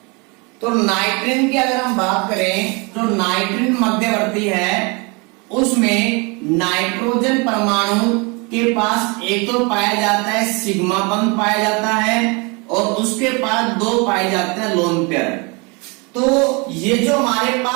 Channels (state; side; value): quieter; left; 29.8 dB